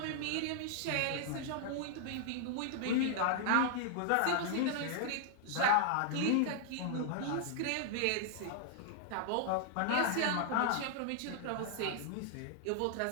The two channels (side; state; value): both; different; correlation -0.01